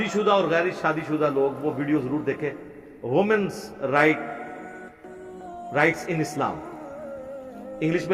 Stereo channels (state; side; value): identical; both; correlation 1.00